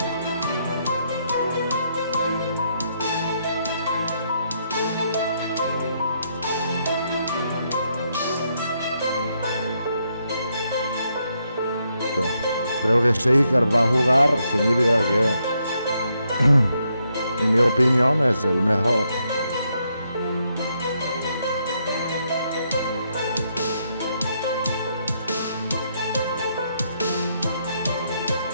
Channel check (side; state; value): both; inverted; correlation -0.77